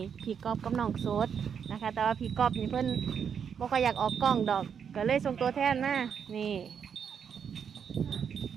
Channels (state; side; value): quieter; left; 7.4 dB